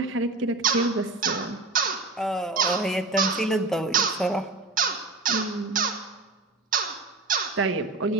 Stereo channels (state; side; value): quieter; left; 3.4 dB